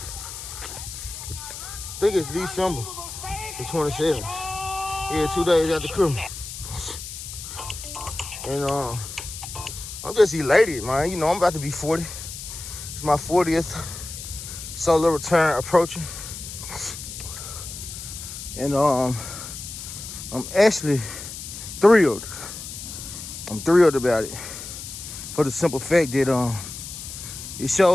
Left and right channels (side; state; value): left; noise; hiss, 10 dB below the sound